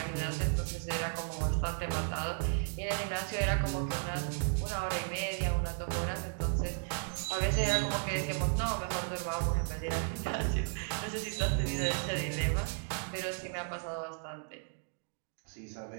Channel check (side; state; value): left; silent; 55 dB below the other